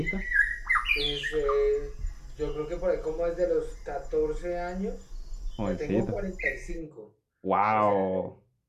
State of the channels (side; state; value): both; identical; correlation 1.00